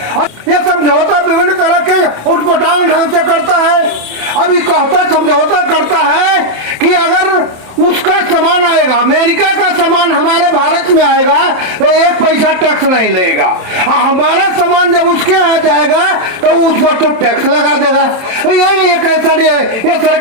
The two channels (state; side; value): late; left; 27 ms